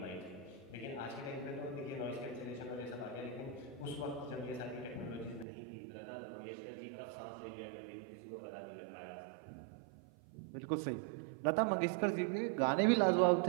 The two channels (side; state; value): left; drops out; at 5.5 s